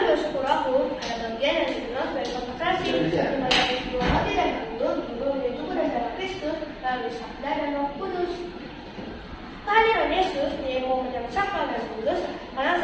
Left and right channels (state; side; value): identical; both; correlation 1.00